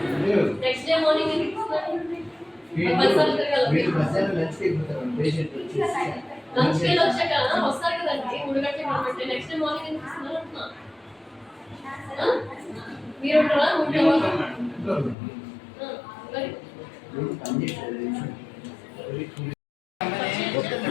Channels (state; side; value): drops out; right; at 15.2 s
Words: next day morning ఎందుకు ఇస్తున్నారు లంచ్ కి వచ్చాక వస్తారు కదండి 3 గంటలకు కాబట్టి నెక్స్ట్ డే మార్నింగ్ ఎందుకు ఇస్తున్నారు అంటున్నా మీరు ఉంటారా